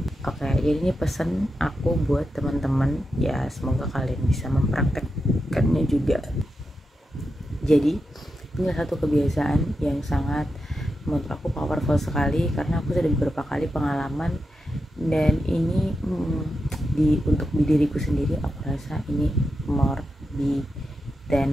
Oke, jadi ini pesan aku buat teman-teman, ya semoga kalian bisa mempraktekkannya juga. Jadi, ini satu kebiasaan yang sangat menurut aku powerful sekali karena aku sudah beberapa kali pengalaman dan ini untuk di diriku sendiri aku rasa ini more di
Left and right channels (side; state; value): both; normal; correlation 0.88